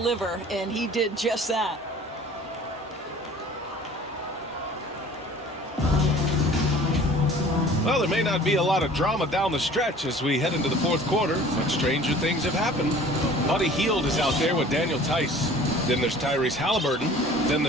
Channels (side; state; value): both; normal; correlation 0.48